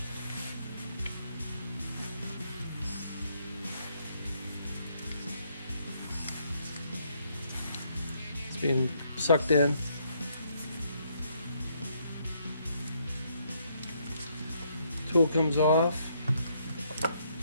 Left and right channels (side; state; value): both; inverted; correlation -0.71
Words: It's being sucked in. Tool comes off,